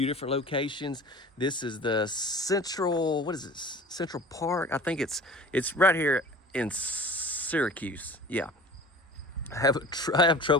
different locations. This is the Central, what is this? Central Park? I think it's right here in Syracuse. Yeah. I have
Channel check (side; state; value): both; normal; correlation 0.41